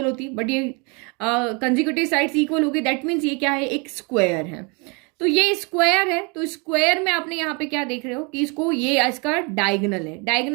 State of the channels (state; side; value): quieter; left; 31.8 dB